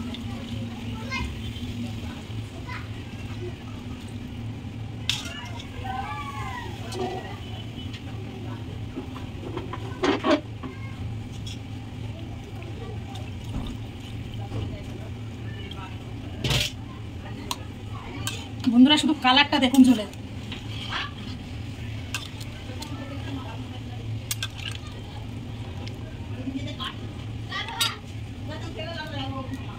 বন্ধুরা শুধু কালারটা দেখুন ঝোলে।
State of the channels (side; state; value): both; identical; correlation 1.00